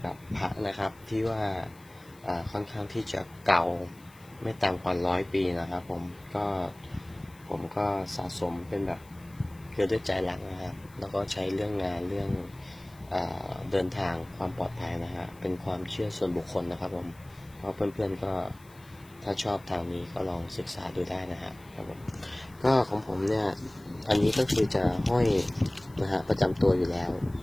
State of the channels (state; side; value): noise; left; hiss, 26 dB below the sound